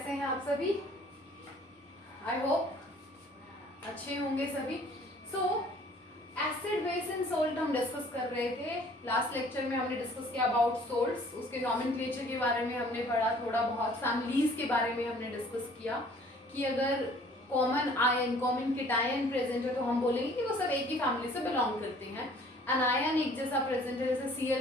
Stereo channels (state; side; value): normal; both; correlation 0.54